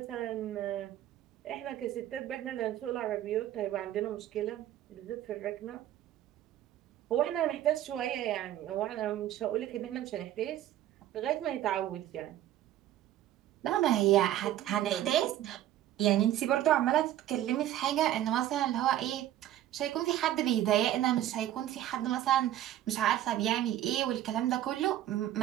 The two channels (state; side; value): quieter; left; 12.7 dB